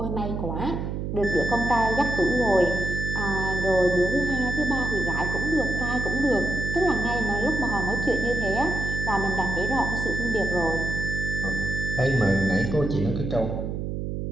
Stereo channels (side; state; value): right; noise; hum, 3 dB below the sound